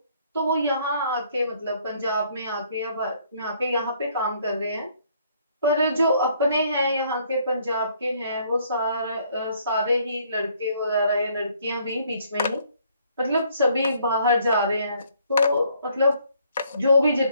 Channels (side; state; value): both; inverted; correlation -0.65